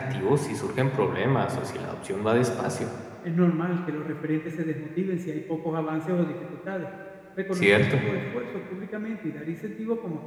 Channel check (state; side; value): identical; both; correlation 1.00